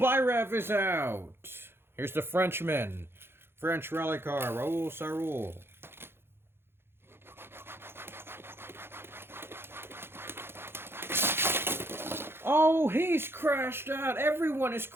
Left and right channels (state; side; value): late; left; 0.11 ms